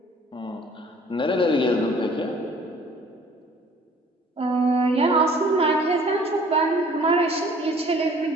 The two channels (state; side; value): normal; both; correlation 0.54